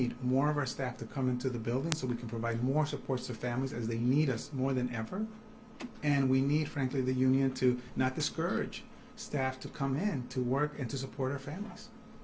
more of our staff to come into the building so we can provide more supports to families as they need us more than ever. And we need, frankly, the union to not discourage staff to come in to work and to support our families.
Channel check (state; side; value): identical; both; correlation 1.00